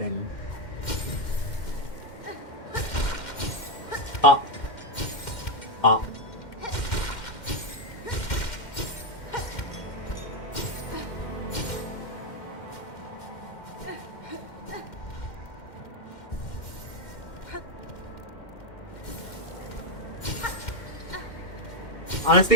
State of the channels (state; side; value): late; right; 2.1 ms